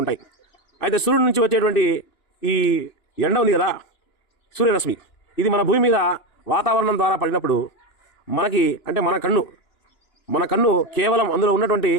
ఉంటాయి. అయితే సూర్యుడి నుంచి వచ్చేటువంటి ఈ ఎండ ఉంది కదా, సూర్యరశ్మి, ఇది మన భూమి మీద వాతావరణం ద్వారా పడినప్పుడు మనకి అంటే మన కన్ను కేవలం అందులో ఉన్నటువంటి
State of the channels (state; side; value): late; right; 2.9 ms